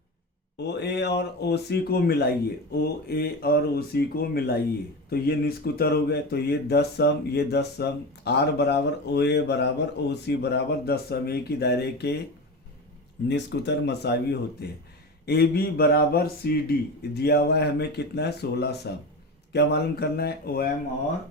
ओ ए और ओ सी को मिलाइए, ओ ए और ओ सी को मिलाइए तो ये निस्फ कुतर हो गए, तो ये 10 सम, ये 10 सम। आर बराबर ओ ए बराबर ओ सी बराबर 10 सम, एक ही दायरे के निस्फ कुतर मसावी होते हैं। ए बी बराबर सी डी दिया हुआ है हमें, कितना है, 16 सम। क्या मालूम करना है? ओ एम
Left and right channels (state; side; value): normal; both; correlation 0.25